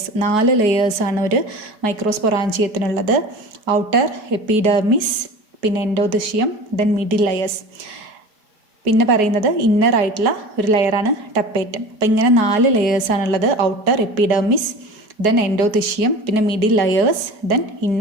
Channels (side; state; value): left; late; 4.7 ms